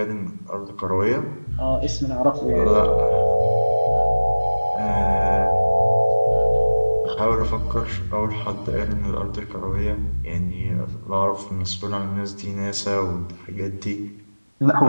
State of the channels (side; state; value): both; inverted; correlation -1.00